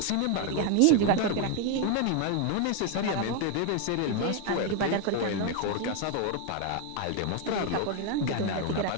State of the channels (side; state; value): both; different; correlation 0.01